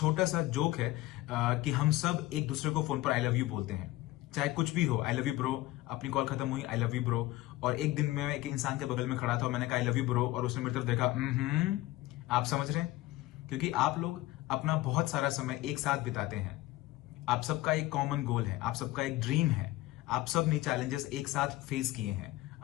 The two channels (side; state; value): right; quieter; 17.6 dB